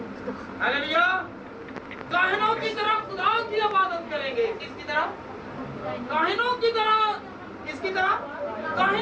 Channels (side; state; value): both; identical; correlation 1.00